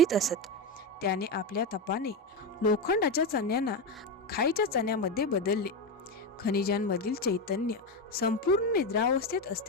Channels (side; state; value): both; normal; correlation 0.13